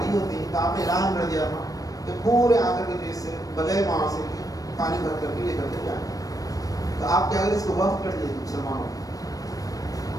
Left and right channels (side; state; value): right; late; 0.17 ms